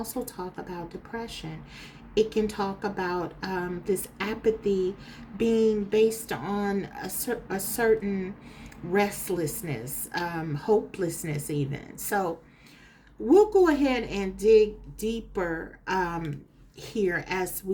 talk about depression. It can talk about this apathy being based on a certain restlessness, hopelessness even. So we'll go ahead and dig deeper here as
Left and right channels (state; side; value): identical; both; correlation 1.00